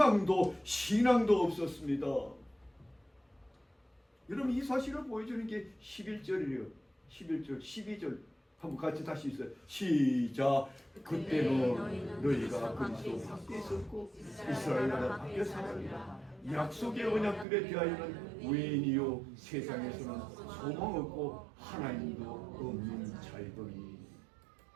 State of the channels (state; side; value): drops out; left; at 17.4 s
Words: 신앙도 없었습니다. 여러분 이 사실을 보여주는 게 11절이에요. 11절, 12절 한번 같이 다시 있어요. 시작. 그때는 너희가 그리스도 밖에 있었고 이스라엘나라 밖에 살았다. 약속의 언약들에 대하여는 외인이요 세상에서는 소망 없고 하나님도 없는 자이더니.